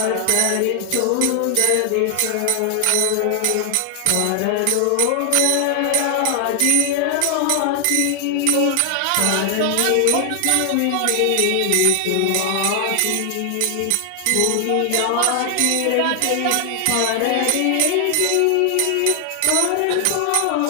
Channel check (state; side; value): different; both; correlation 0.00